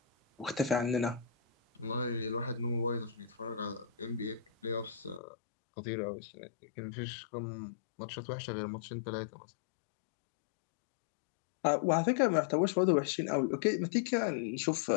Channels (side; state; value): right; drops out; at 5.2 s